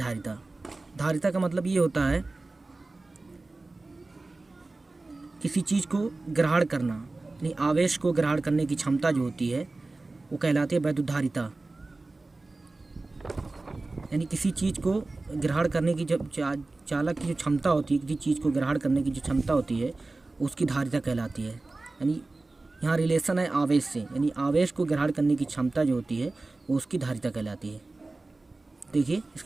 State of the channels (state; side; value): quieter; left; 3.2 dB